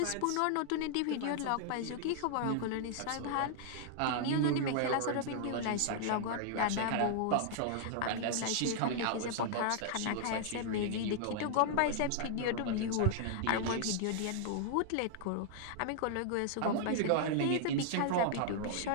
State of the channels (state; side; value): different; both; correlation -0.01